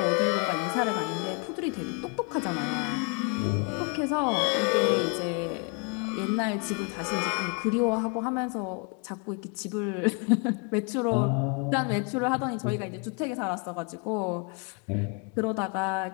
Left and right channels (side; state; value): right; quieter; 33.0 dB